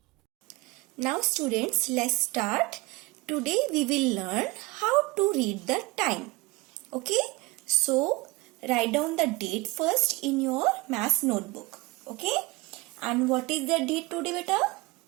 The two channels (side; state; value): left; quieter; 22.6 dB